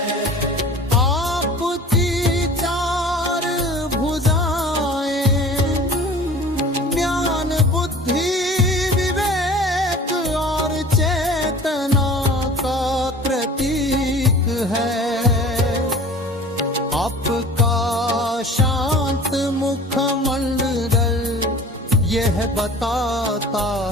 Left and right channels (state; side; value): normal; both; correlation 0.43